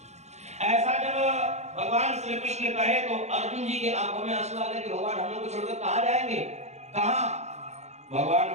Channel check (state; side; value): late; left; 0.33 ms